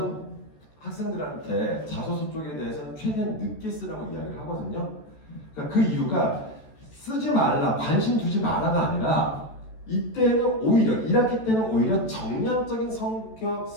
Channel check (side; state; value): right; late; 14 ms